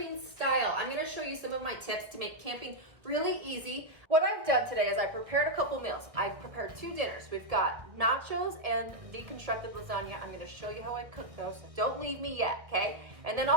style. I'm gonna show you some of my tips to make camping really easy. What I've done today is I prepared a couple meals. I prepared 2 dinners. We've got nachos and deconstructed lasagna. I'm gonna show you how I cook those, so don't leave me yet, okay? And then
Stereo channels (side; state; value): left; late; 1.4 ms